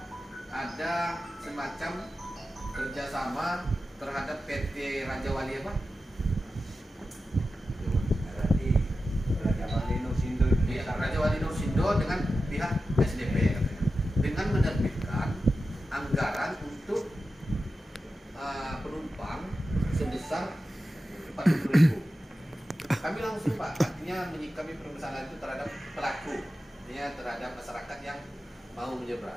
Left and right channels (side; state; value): both; normal; correlation 0.92